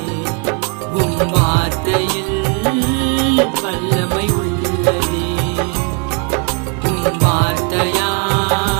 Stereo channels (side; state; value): left; quieter; 33.6 dB